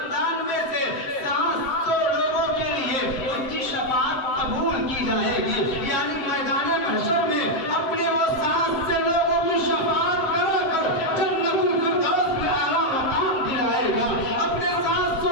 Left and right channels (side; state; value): right; late; 7.6 ms